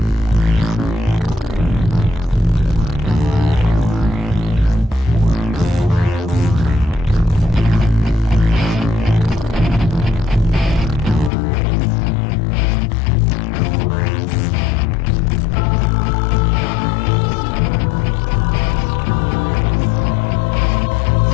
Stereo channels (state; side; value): drops out; right; at 11.3 s